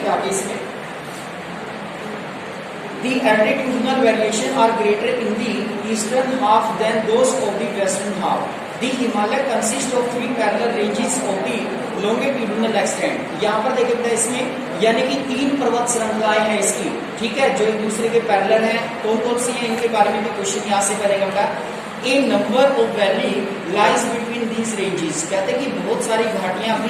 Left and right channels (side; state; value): both; identical; correlation 1.00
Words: आगे इसमें The altitudinal variation are greater in the eastern half than those of the western half. The Himalaya consists of 3 parallel ranges of the longitudinal extent. यहाँ पर देखिए इसमें यानी कि 3 पर्वत श्रृंखलाएं हैं इसकी, ठीक है, जो एक दूसरे के पैरेलल हैं, कौन कौन सी हैं इनके बारे में भी क्वेश्चन यहाँ से करेगा। A number of valley lies between these ranges, कहते हैं कि बहुत सारी घाटियां